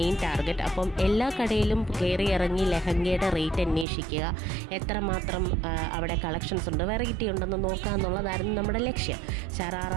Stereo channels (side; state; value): left; drops out; at 3.9 s